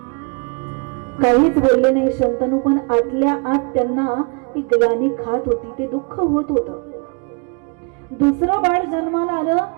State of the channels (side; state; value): left; quieter; 34.1 dB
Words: काहीच बोलले नाही शंतनू, पण आतल्या आत त्यांना ती ग्लानी खात होती, ते दुःख होत होतं. दुसरं बाळ जन्माला आलं,